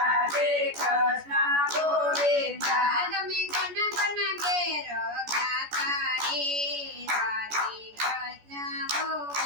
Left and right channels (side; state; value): left; late; 14 ms